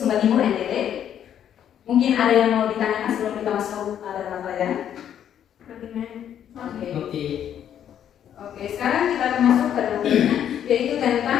Timur NTT. Mungkin ada yang mau ditanyakan sebelum kita masuk dalam pelajaran? Oke. Oke, sekarang kita akan masuk ke dalam pelajaran, yaitu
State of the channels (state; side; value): quieter; right; 9.8 dB